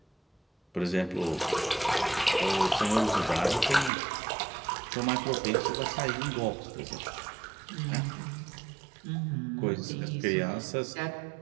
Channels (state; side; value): drops out; left; at 3.9 s